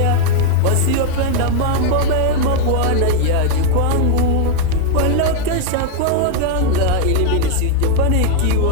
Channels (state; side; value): different; both; correlation 0.00